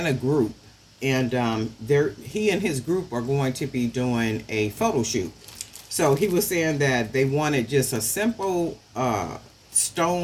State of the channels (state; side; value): identical; both; correlation 1.00